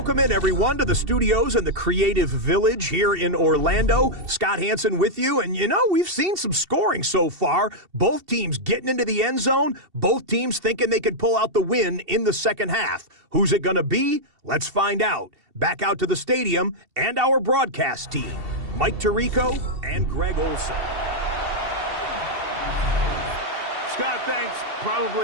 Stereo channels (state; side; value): late; left; 2.7 ms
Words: in, everyone, to the studios in the Creative Village here in Orlando. Scott Hansen with you, and we've seen some scoring so far. Both teams getting into the end zone, both teams thinking they could pull out the win in the second half. Who's it going to be? Let's find out. Back out to the stadium and our broadcast team, Mike Tirico and Greg Olson. Scott, thanks.